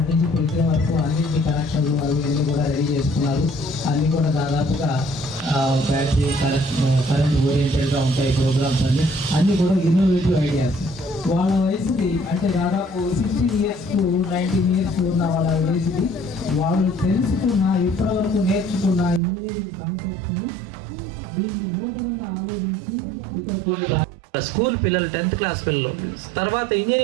నుంచి పులితే వరకు అన్నింటి కనెక్షన్లు అవి అన్నీ కూడా రెడీ చేసుకున్నారు. అన్నీ కూడా దాదాపుగా బ్యాటరీ కరెంట్ ఓరియంటెడ్గా ఉంటాయి ప్రోగ్రామ్స్ అన్నీ కూడా ఇన్నోవేటివ్ ఐడియాస్. వాళ్ళ వయసుకి అంటే దాదాపు 16 years to 19 years ఉన్న వాళ్ళ వయసుకి వాళ్ళు తెలుసుకున్న ఇప్పటివరకు నేర్చుకున్న ఇంజనీరింగ్ కాన్సెప్ట్స్ని దీన్ని నూతనంగా ఆలోచించి ఇక్కడ కొన్ని స్కూల్ పిల్లలు 10th క్లాస్ పిల్లలు తర్వాత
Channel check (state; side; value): drops out; left; at 19.2 s